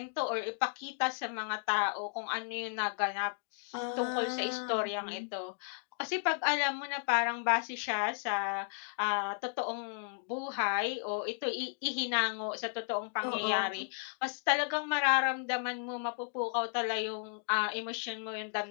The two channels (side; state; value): right; silent; 55 dB below the other